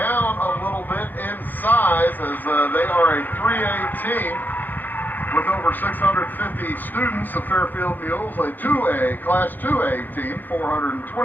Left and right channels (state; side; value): late; right; 0.087 ms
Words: a little bit in size as they are a 3A team with over 650 students. The Fairfield Mules, a 2A, Class 2A team,